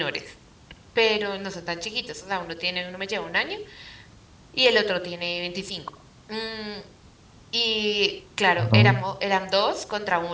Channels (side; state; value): both; identical; correlation 1.00